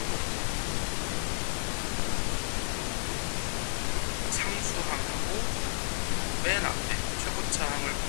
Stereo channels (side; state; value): right; silent; 57 dB below the other